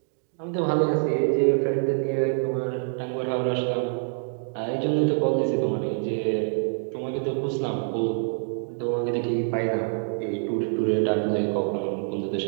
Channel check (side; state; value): left; silent; digital silence